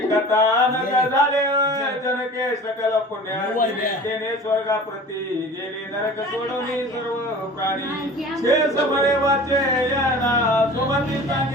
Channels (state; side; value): normal; both; correlation 0.40